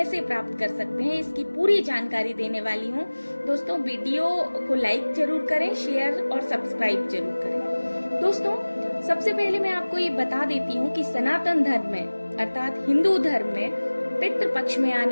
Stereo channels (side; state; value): both; inverted; correlation -1.00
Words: प्राप्त कर सकते हैं, इसकी पूरी जानकारी देने वाली हूँ। दोस्तों, वीडियो को लाइक जरूर करें, शेयर और सब्सक्राइब जरूर करें। दोस्तों, सबसे पहले मैं आपको ये बता देती हूँ कि सनातन धर्म में अर्थात हिंदू धर्म में पितृ पक्ष में